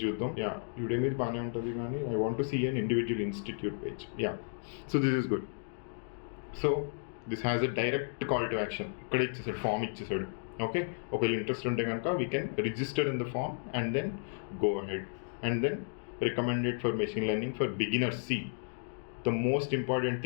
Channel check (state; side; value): silent; right; digital silence